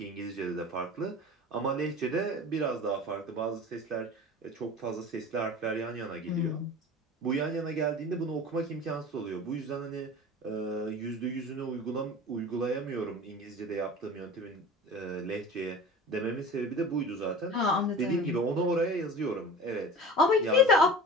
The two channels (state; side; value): normal; both; correlation 0.37